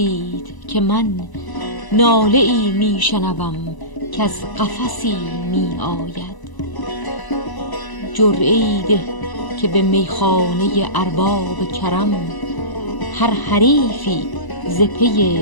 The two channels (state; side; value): late; right; 1.0 ms